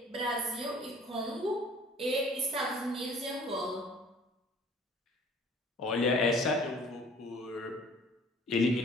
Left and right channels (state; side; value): normal; both; correlation 0.51